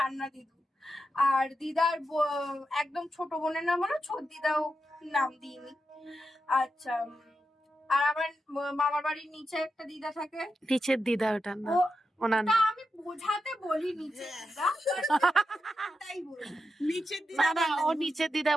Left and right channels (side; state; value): both; normal; correlation 0.88